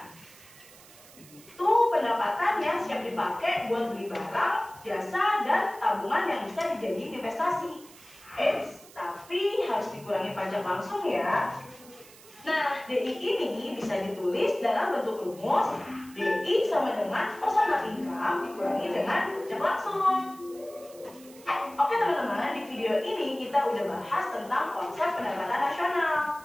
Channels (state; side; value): noise; right; hiss, 22 dB below the sound